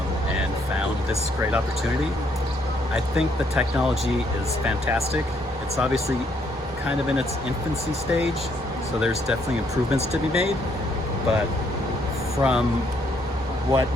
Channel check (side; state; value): both; normal; correlation 0.70